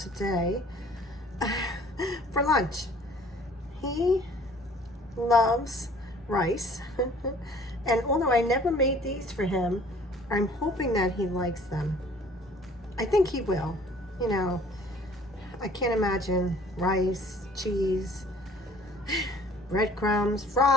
for lunch. He loves rice, and although I never made these for him, I'm hoping that he likes them. I think he will. You know, I can't imagine rice, cheese, breadcrumbs,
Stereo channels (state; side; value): normal; both; correlation 0.53